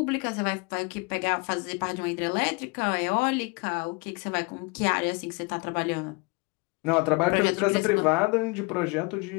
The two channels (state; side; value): quieter; right; 28.9 dB